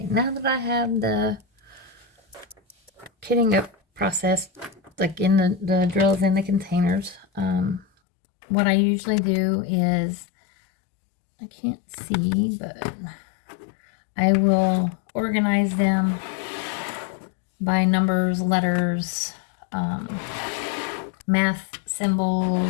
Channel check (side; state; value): right; drops out; at 7.9 s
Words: now that I have the kitting up process, like in the drills in the containers, what I usually do is, I can't see, but I will organize them by numbers, letters, math